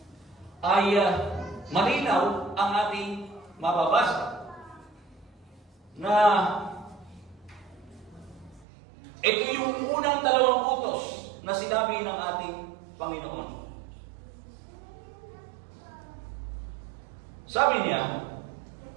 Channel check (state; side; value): drops out; left; at 8.7 s